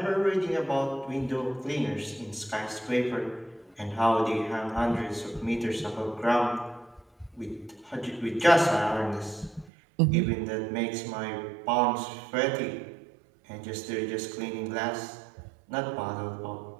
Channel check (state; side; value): drops out; left; at 9.7 s